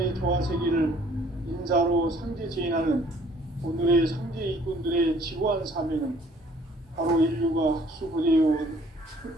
조화세기를 인사로 상제 제인하는 오늘의 상제 일꾼들의 지구한 사명은 바로 인류가 학수고대해온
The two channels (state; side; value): normal; both; correlation 0.58